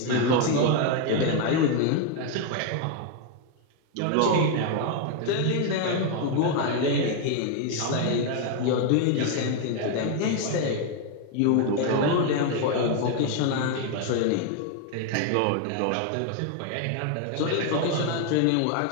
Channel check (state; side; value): different; both; correlation 0.01